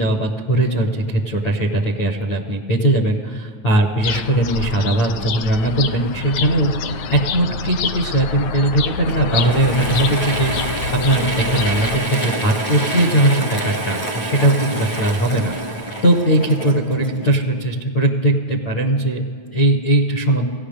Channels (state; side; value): late; right; 9.2 ms